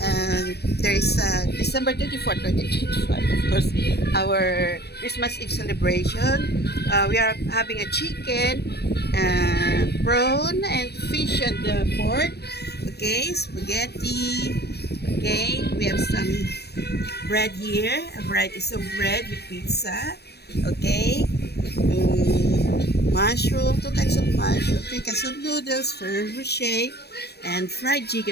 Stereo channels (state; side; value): late; right; 0.47 ms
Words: There is December 24, 2025, of course, our Christmas Eve celebration. We are having a chicken, prawn, and fish and pork. Okay, spaghetti. Okay, we have some bread here, a variety of bread with pizza. Okay, mushroom, two kinds of mushroom, three kinds of noodles, Ferrero Rocher, and fried